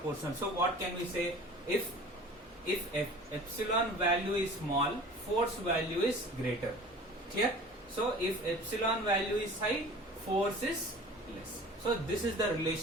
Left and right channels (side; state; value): both; normal; correlation 0.43